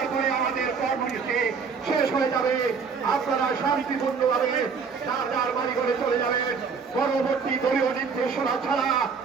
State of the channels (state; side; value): quieter; left; 5.6 dB